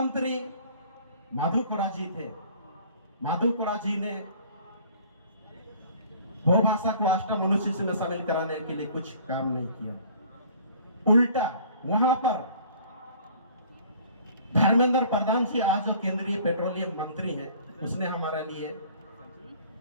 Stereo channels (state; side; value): inverted; both; correlation -0.51